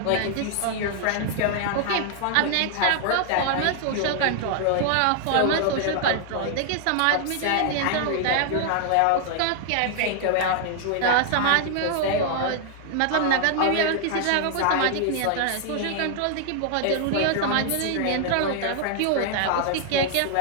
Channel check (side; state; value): both; different; correlation 0.00